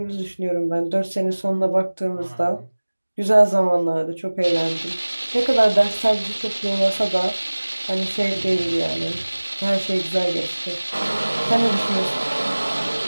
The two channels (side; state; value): both; inverted; correlation -1.00